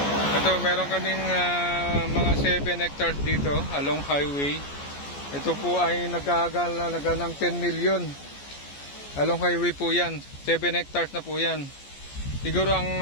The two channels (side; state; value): right; late; 14 ms